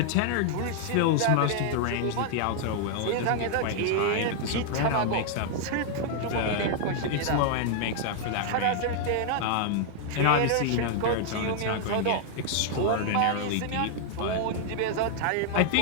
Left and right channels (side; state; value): both; different; correlation 0.00